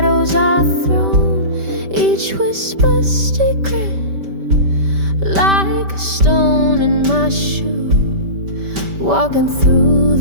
are thrown. Each whisper secret, like a stone in my shoe, walking through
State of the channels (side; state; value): left; late; 5.1 ms